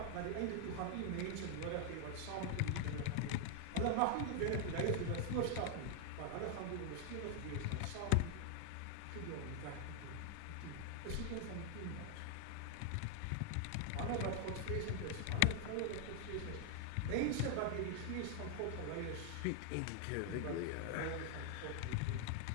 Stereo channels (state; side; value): different; both; correlation 0.00